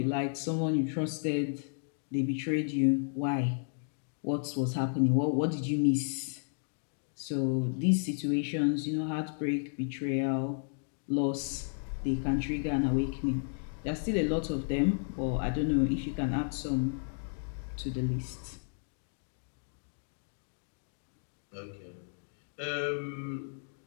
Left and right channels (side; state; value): right; silent; digital silence